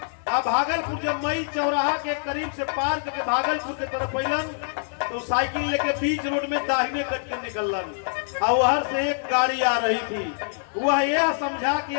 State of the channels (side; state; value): right; silent; digital silence